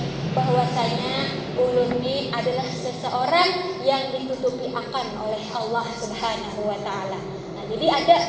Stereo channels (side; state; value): both; identical; correlation 1.00